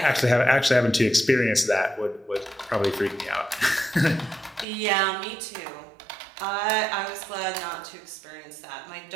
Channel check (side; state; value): left; drops out; at 4.7 s